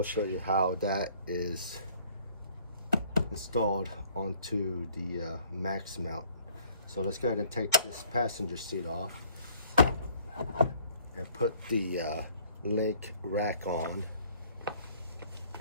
show you how that is installed onto the max mount. So let's go ahead and take this passenger seat off and put the LinQ rack on.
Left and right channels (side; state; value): both; inverted; correlation -0.58